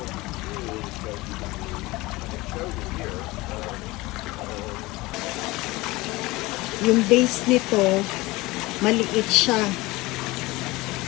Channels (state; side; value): quieter; right; 21.0 dB